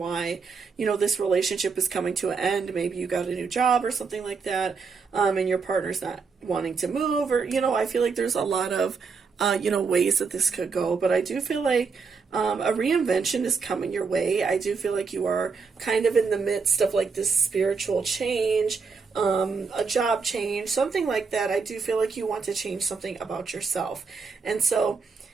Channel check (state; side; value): quieter; left; 5.1 dB